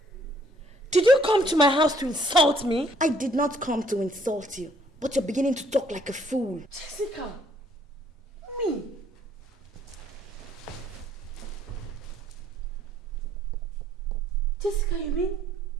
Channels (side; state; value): both; normal; correlation 0.64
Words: did you come to my house to insult me? I did not come to insult you. But you're beginning to talk like a fool. Jessica, me? Jessica, you mean